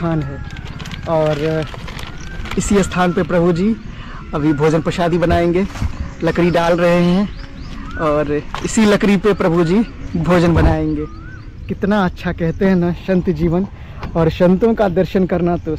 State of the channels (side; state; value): both; identical; correlation 1.00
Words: है, और इसी स्थान पे प्रभु जी अभी भोजन प्रसादी बनाएंगे। लकड़ी डाल रहे हैं और इसी लकड़ी पे प्रभु जी भोजन बनाएंगे। कितना अच्छा कहते हैं ना संत जीवन, और संतों का दर्शन करना तो